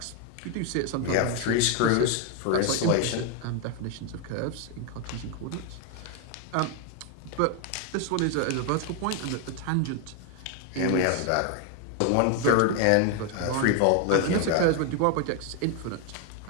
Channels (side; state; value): both; different; correlation 0.01